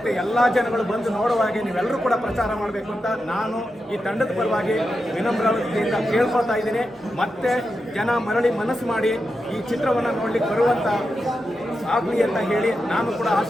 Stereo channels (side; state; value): both; normal; correlation 0.89